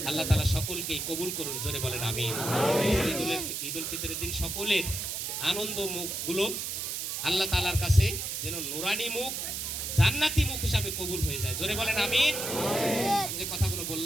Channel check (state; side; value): noise; right; hiss, 3 dB below the sound